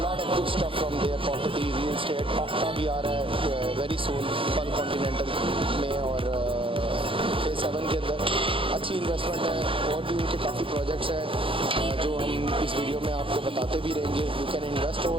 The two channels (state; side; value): late; left; 0.26 ms